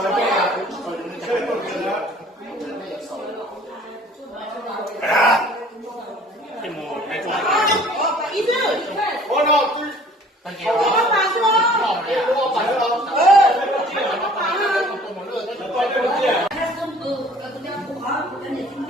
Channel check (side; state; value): both; normal; correlation 0.52